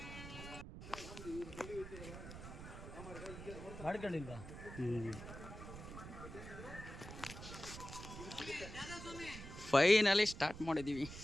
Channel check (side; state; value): right; noise; rumble, 11 dB below the sound